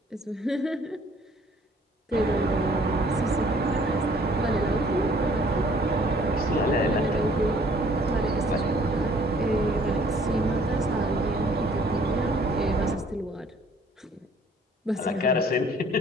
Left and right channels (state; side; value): normal; both; correlation 0.58